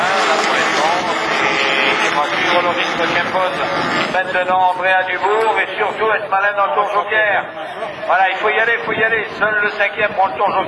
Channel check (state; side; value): identical; both; correlation 1.00